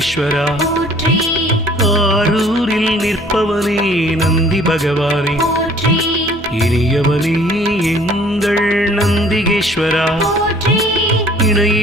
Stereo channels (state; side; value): normal; both; correlation 0.54